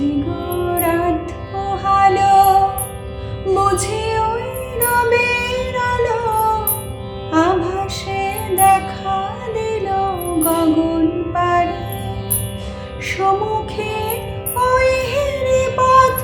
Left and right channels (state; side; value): identical; both; correlation 1.00